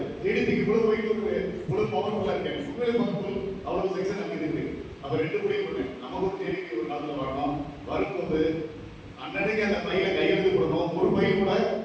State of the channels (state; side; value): identical; both; correlation 1.00